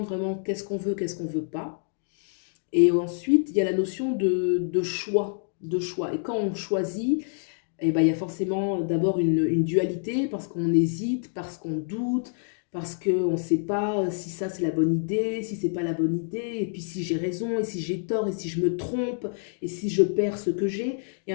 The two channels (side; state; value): right; silent; digital silence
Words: vraiment qu'est-ce qu'on veut, qu'est-ce qu'on ne veut pas. Et ensuite, il y a la notion de choix, de choix. Et quand on choisit, eh ben, il y a forcément d'abord une dualité parce qu'on hésite, parce qu'on doute, parce qu'on ne sait pas si ça c'est la bonne idée, si c'est pas la bonne idée, et puis si j'ai raison, et si j'ai tort, et si je me trompe, et si je perds ce que j'ai. Il y a